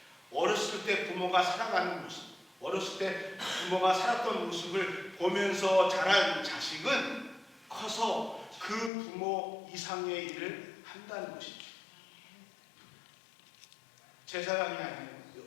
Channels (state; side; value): drops out; right; at 8.9 s